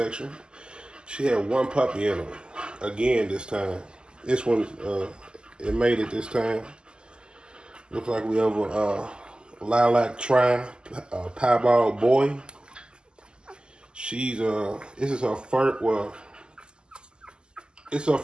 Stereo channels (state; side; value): late; left; 0.048 ms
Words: She had one puppy in her. Again this time. This one, it made it this time. Looks like we have a lilac piebald boy. This is her first, it's her